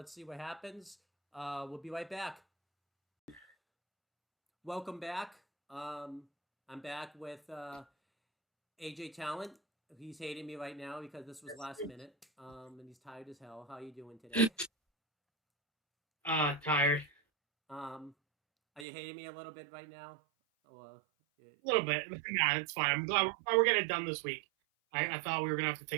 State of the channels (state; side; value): drops out; left; at 18.9 s